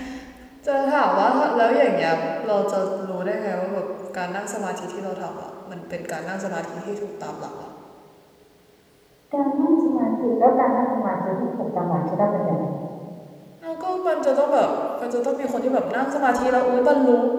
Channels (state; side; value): identical; both; correlation 1.00